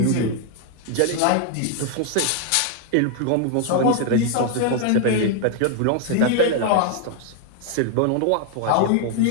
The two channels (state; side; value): different; both; correlation 0.00